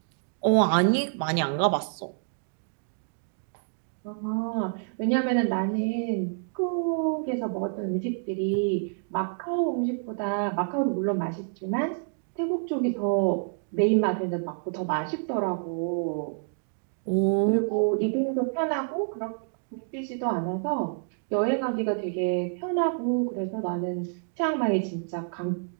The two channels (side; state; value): left; silent; digital silence